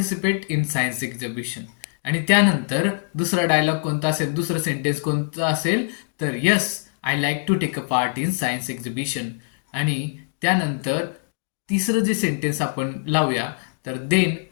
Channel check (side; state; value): right; silent; digital silence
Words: in science exhibition. आणि त्यानंतर दुसरा डायलॉग कोणता असेल, दुसरं सेंटेन्स कोणतं असेल, तर yes I like to take a part in science exhibition. आणि त्यानंतर तिसरं जे सेंटेन्स आपण लावूया, तर देन